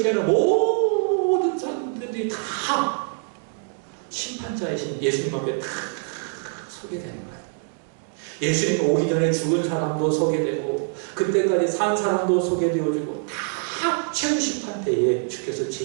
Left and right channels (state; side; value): silent; left; 57 dB below the other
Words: 태어난 모든 사람들이 다 심판자이신 예수님 앞에 다 서게 되는 거예요. 예수님 오기 전에 죽은 사람도 서게 되고 그때까지 산 사람도 서게 되어지고 다 최후 심판 때에 주께서